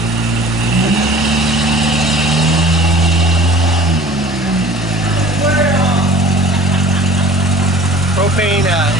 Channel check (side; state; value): both; normal; correlation 0.45